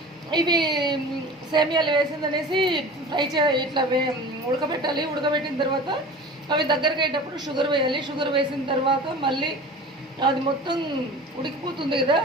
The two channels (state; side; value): normal; both; correlation 0.38